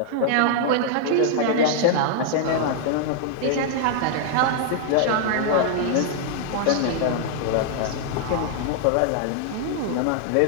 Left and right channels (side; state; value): both; different; correlation -0.01